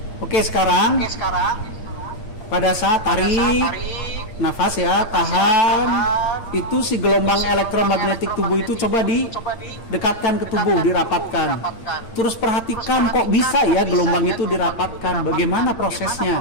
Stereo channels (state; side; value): late; right; 8.8 ms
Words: Oke, sekarang pada saat tarik nafas ya, tahan, itu si gelombang elektromagnetik tubuh itu coba didekatkan ke tubuh, dirapatkan. Terus perhatikan kok bisa ya gelombang itu dirapatkan, bagaimana